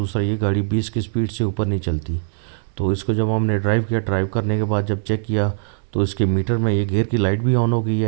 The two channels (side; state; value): left; silent; 62 dB below the other